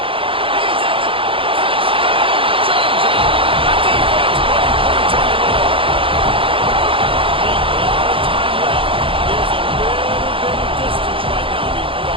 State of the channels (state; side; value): late; left; 0.26 ms